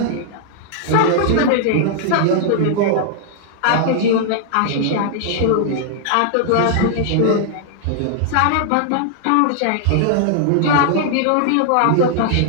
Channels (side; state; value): both; different; correlation -0.01